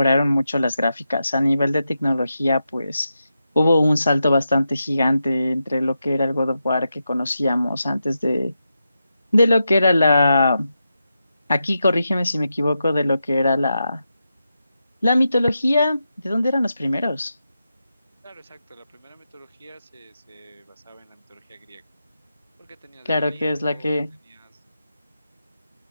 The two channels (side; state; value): both; inverted; correlation -0.88